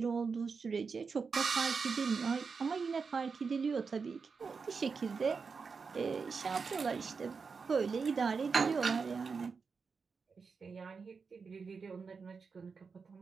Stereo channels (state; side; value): quieter; left; 5.2 dB